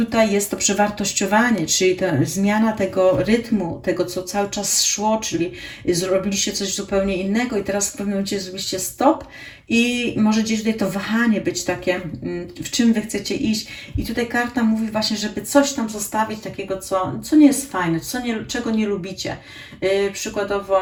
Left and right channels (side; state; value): both; identical; correlation 1.00